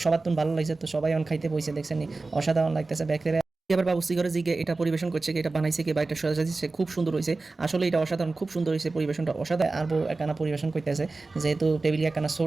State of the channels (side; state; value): left; quieter; 3.5 dB